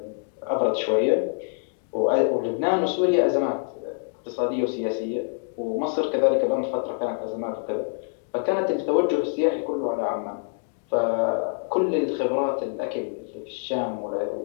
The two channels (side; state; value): right; silent; 61 dB below the other